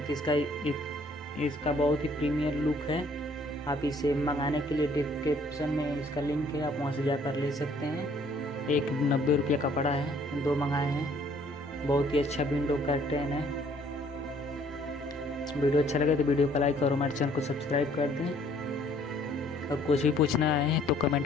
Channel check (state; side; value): normal; both; correlation 0.60